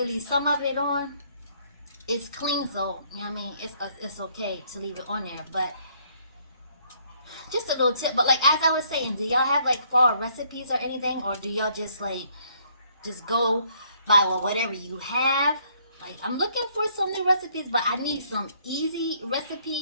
leave some of it on. It's clean, so it's okay to leave it on there. But just a little tip. But like, as I was saying, do y'all have like fall recipes or anything, or do y'all just go by whatever you have? Like, I'm looking for some new recipes, but I need some easy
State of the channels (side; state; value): both; inverted; correlation -0.66